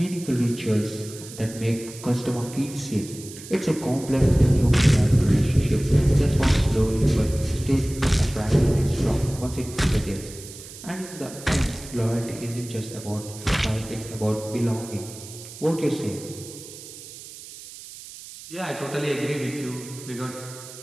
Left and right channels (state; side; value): noise; right; hiss, 15 dB below the sound